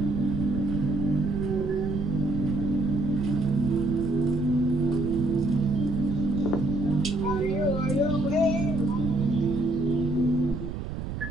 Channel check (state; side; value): noise; right; rumble, 6 dB below the sound